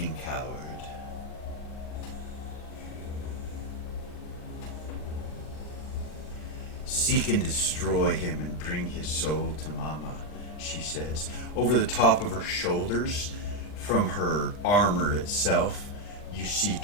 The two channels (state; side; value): late; right; 39 ms